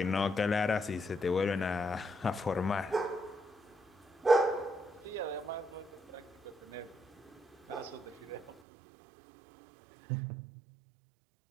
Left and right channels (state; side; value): drops out; left; at 8.6 s